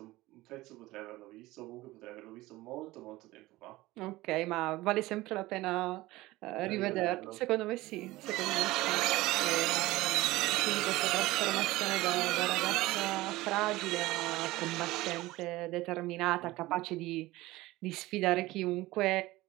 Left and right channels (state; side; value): quieter; left; 18.7 dB